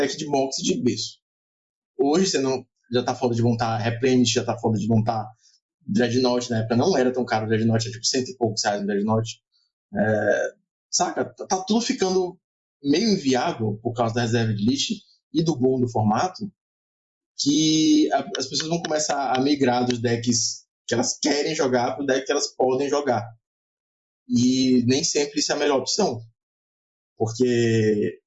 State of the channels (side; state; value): both; identical; correlation 1.00